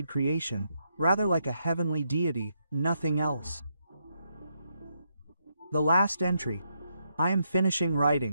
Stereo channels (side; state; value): both; inverted; correlation -0.79